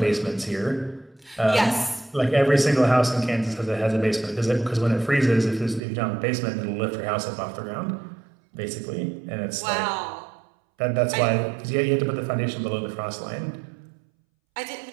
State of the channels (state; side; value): drops out; left; at 5.8 s